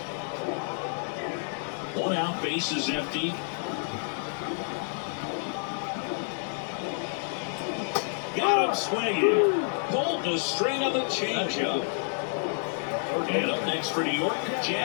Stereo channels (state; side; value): silent; right; 59 dB below the other